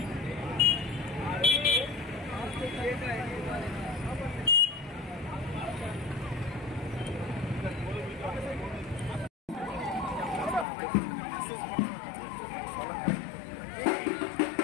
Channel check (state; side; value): drops out; right; at 10.7 s